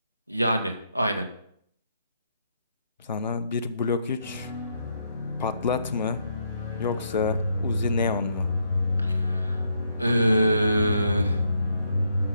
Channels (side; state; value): both; inverted; correlation -0.76